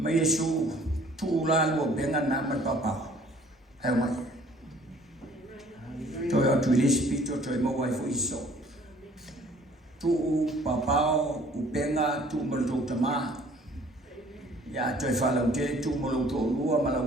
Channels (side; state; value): both; normal; correlation 0.56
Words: Yesu tu la lo benga na ma papa. Ai mai. To ya tu le spirito to mo wai fo iso. Tu papa u benga tu mo to tama. Ya to fa la te tu mo lo to lua ma la